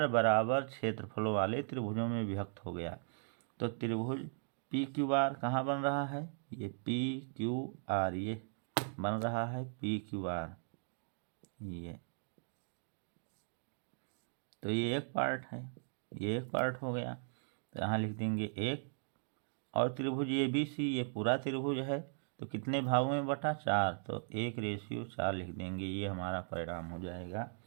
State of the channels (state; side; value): silent; left; digital silence